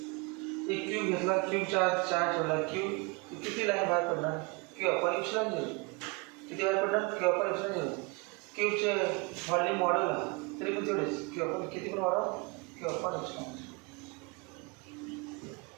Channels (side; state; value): left; quieter; 29.0 dB